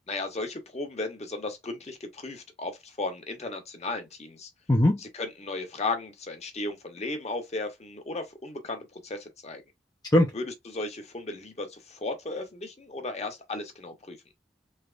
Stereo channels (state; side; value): normal; both; correlation 0.60